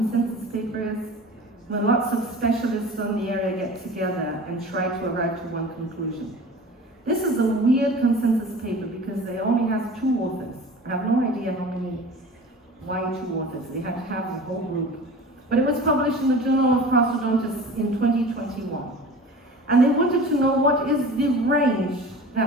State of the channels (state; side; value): normal; both; correlation 0.39